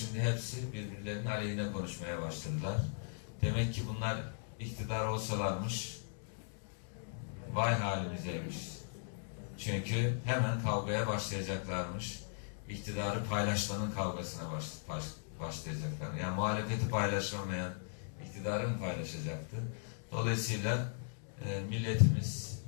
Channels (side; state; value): right; silent; digital silence